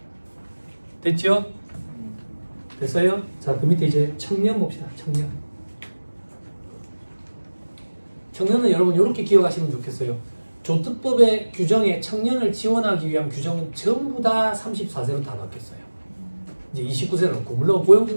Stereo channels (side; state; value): both; inverted; correlation -1.00